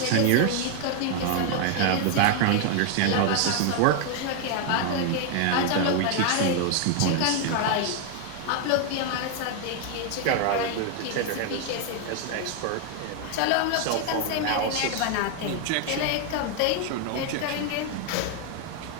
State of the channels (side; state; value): both; different; correlation 0.01